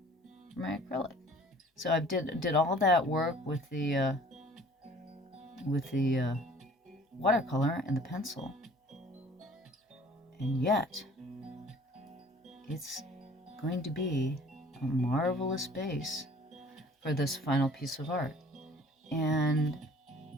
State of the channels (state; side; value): normal; both; correlation 0.51